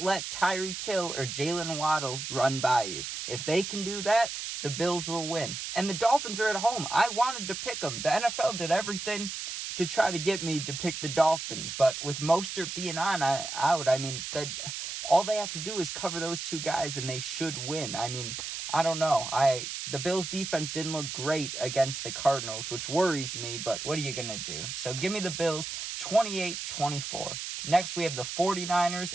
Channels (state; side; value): noise; right; hiss, 6 dB below the sound